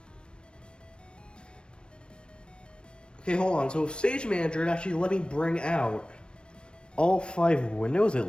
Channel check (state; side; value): late; right; 0.056 ms